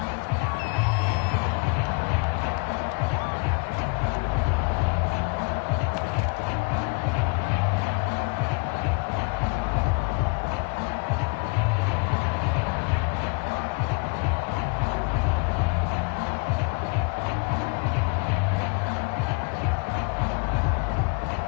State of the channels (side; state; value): right; quieter; 32.6 dB